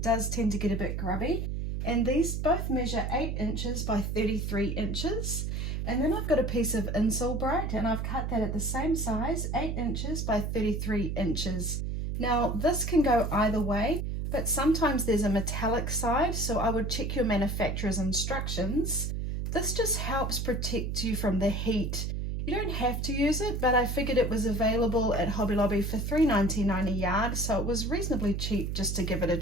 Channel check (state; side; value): noise; right; hum, 2 dB below the sound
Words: does tend to get a bit grubby. And these both measure 8 inches by 33 inches. And then I've got a piece of insole bright and I've cut that at the same size, 8 inches by 33 inches. Now this can go either way, but sometimes there's a metallic side, so I would check your manufacturer's instructions. This just helps protect you from the heat. You don't have to use it, but I figured it was available at Hobby Lobby for $3.99 a yard, so it was reasonably cheap just to give it a